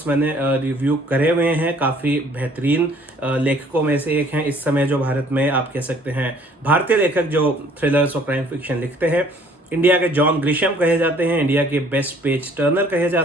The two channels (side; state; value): both; normal; correlation 0.57